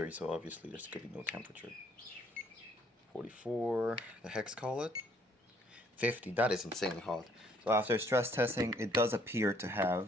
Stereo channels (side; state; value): both; normal; correlation 0.64